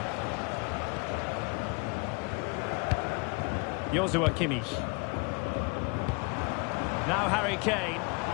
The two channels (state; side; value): quieter; right; 30.6 dB